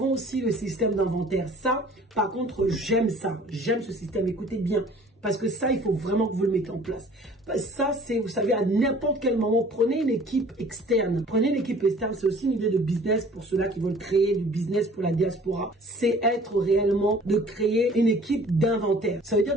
aussi le système d'inventaire. Ça, par contre, j'aime ça. J'aime ce système. Écoutez bien. Parce que ça, il faut vraiment que vous le mettez en place. Ça, c'est, vous savez, à n'importe quel moment, prenez une équipe externe. Prenez une équipe externe, c'est aussi une idée de business pour ceux-là qui veulent créer du business pour la diaspora. C'est être réellement de créer une équipe d'inventaire. Ça veut dire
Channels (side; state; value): both; normal; correlation 0.51